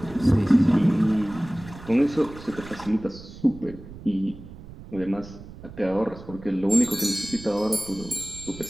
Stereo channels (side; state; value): right; noise; rumble, 16 dB below the sound